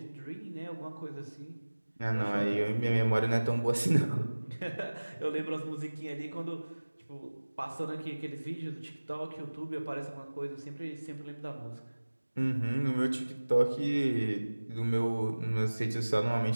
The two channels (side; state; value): both; inverted; correlation -1.00